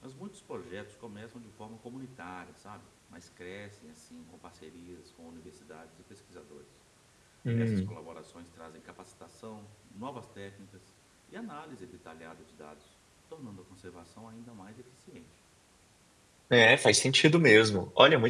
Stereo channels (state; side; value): identical; both; correlation 1.00